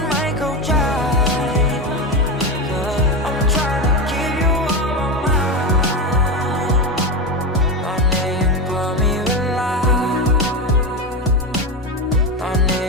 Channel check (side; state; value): both; normal; correlation 0.17